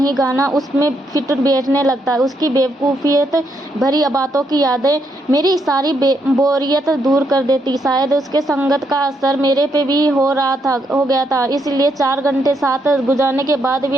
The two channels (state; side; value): normal; both; correlation 0.77